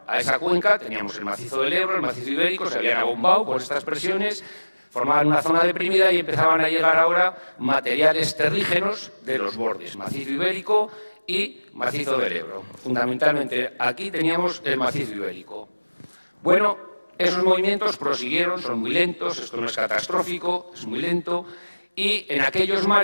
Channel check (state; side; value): inverted; both; correlation -1.00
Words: a esa cuenca, teníamos el macizo del Ebro, el macizo ibérico, se habían abombado por estas presiones, formaban una zona deprimida y empezaban a llegar ahora materiales terrígenos de los bordes, macizo ibérico y macizo del Ebro. Fundamentalmente aquí teníamos el macizo ibérico. Bueno, esos movimientos prosiguieron, son muy lentos, esto no es catastrófico, es muy lento, y en aquellos